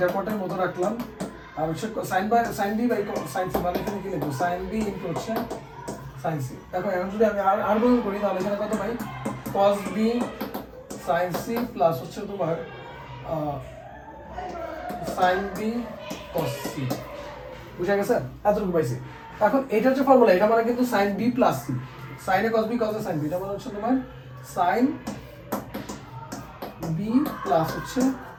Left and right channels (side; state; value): both; identical; correlation 1.00